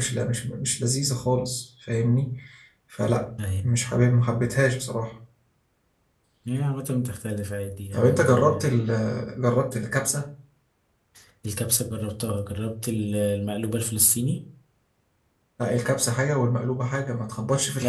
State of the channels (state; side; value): identical; both; correlation 1.00